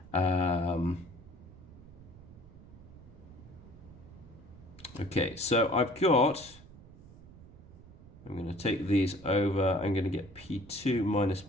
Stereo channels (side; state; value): right; noise; rumble, 20 dB below the sound